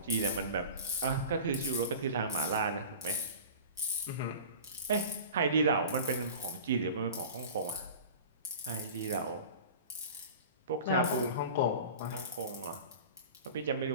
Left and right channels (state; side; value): inverted; both; correlation -0.38